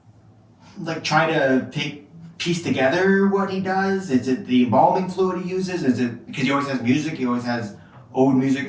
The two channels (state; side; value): identical; both; correlation 1.00